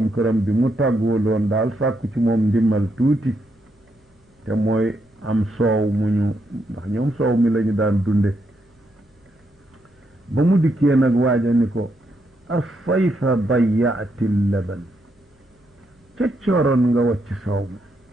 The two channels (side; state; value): both; normal; correlation 0.79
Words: këram bi mu tàggoo loon daal sàkku ci moom ndimmal tuuti te mooy am soow mu ñu ndax ñoom soow mi lañu daan dunde ba mu dikkee nag waaja ni ko asayfa dayaati laban ca cooroon nga wacc soow